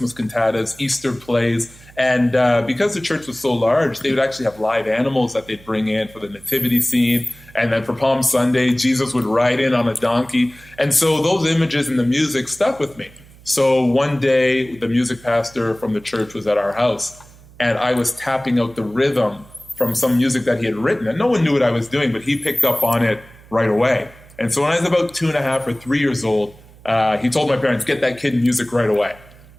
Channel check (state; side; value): noise; right; hum, 23 dB below the sound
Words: cantatas, Easter plays. And because the church was so large, they would actually have live animals that they'd bring in for the nativity scene. And then for Palm Sunday, Jesus would ride in on a donkey. And so those images and the music stuck with me. So one day, the music pastor from the church was at our house, and I was tapping out the rhythm from some music that he had written. And no one knew what I was doing, but he picked up on it right away. And so when I was about 2.5 or 3 years old, he told my parents, get that kid music right away.